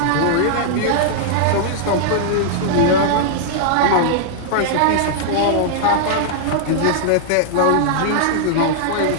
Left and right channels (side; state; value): both; different; correlation -0.01